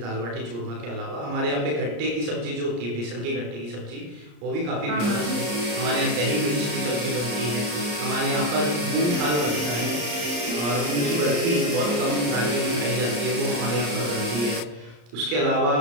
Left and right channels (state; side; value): late; left; 34 ms